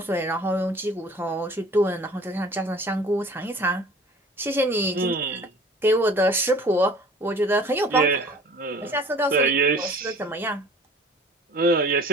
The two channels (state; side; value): normal; both; correlation 0.47